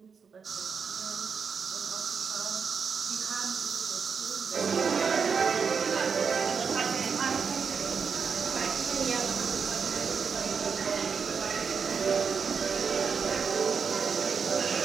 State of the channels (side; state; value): left; quieter; 6.0 dB